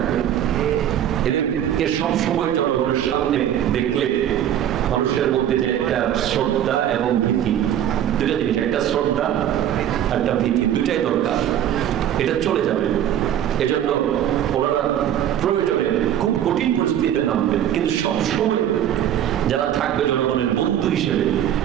এদেরকে সবসময় জনগণের সামনে দেখলে মানুষের মধ্যে যে একটা শ্রদ্ধা এবং ভীতি, দুটা জিনিস, একটা শ্রদ্ধা একটা ভীতি, দুটাই দরকার। এটা চলে যাবে। এজন্য ওনারা প্রয়োজনে খুব কঠিন পরিস্থিতিতে নামবেন, কিন্তু সবসময় যারা থাকবে জনগণের বন্ধু হিসেবে,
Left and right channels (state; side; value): quieter; left; 10.7 dB